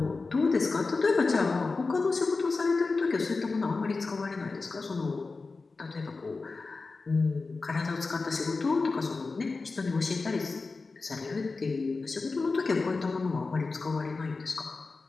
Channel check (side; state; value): right; quieter; 4.0 dB